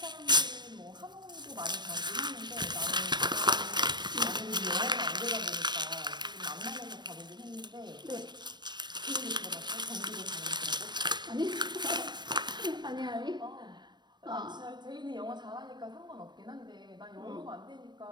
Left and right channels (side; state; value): left; late; 0.21 ms